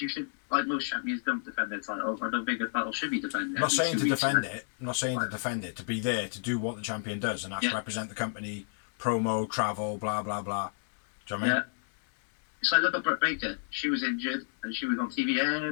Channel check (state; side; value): silent; right; 58 dB below the other